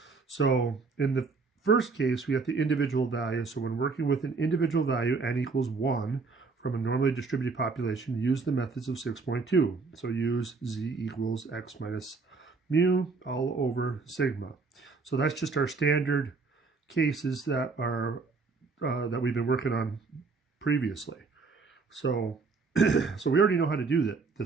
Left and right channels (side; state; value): left; quieter; 4.3 dB